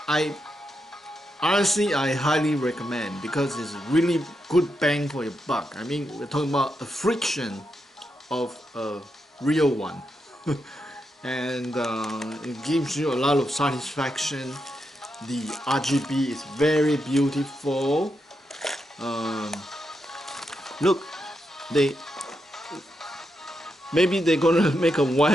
honestly, I highly recommend, because it's really good bang for your buck. I mean, we're talking about a fraction of a real one. And it gives you a lot of satisfaction. The RGB is very beautiful. Look, maybe they're gonna make a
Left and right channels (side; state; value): both; normal; correlation 0.84